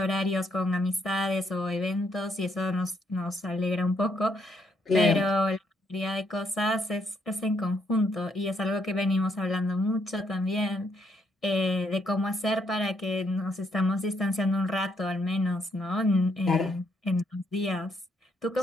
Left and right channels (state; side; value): normal; both; correlation 0.73